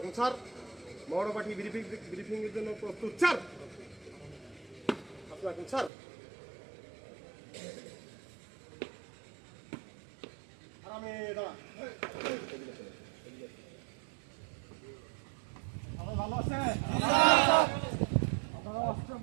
স্যার মৌরপাঠি ব্রিফিং এর জন্য প্রস্তুত স্যার। স্যার আরামে দাঁড়া। ভালো আছে?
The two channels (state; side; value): drops out; left; at 5.9 s